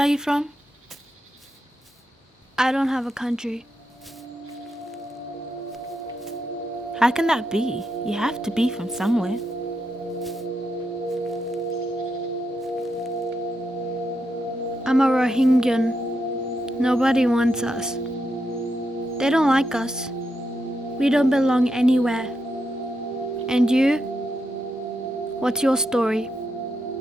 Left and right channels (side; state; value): both; normal; correlation 0.83